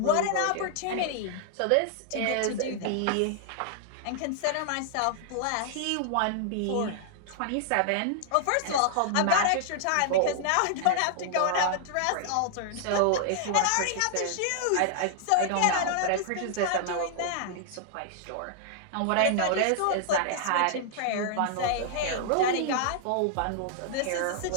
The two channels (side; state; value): both; different; correlation -0.01